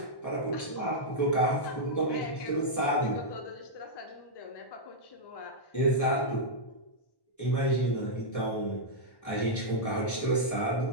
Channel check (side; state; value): right; late; 1.1 ms